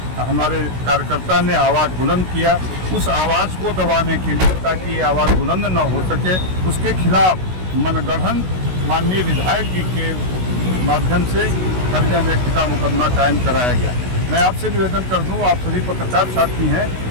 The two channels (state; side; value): late; left; 16 ms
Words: हमारे कार्यकर्ता ने आवाज़ बुलंद किया। उस आवाज़ को दबाने के लिए, ताकि ये आवाज़ बुलंद न हो सके, उसके खिलाफ मनगढ़ंत माननीय विधायक जी के माध्यम से कर्जा व्यक्ति का मुकदमा कायम कराया गया। मैं आपसे निवेदन कर दूं, आप सभी पत्रकार साथी हैं,